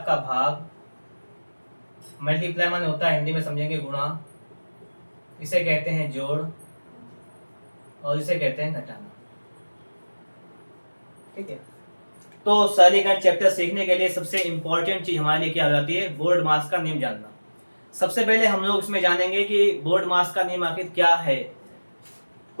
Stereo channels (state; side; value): inverted; both; correlation -1.00